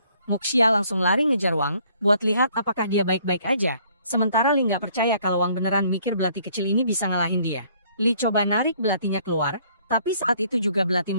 Muxia langsung lari ngejar Wang, buat lihat apakah dia baik-baik aja. Sementara Li nggak percaya kalau Wang beneran mikir belati kecil ini bisa ngalahin dia. Li coba narik belatinya keluar, tapi saat itu juga belati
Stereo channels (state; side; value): inverted; both; correlation -0.62